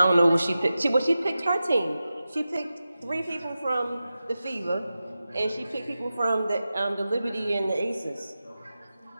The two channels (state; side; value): inverted; both; correlation -0.93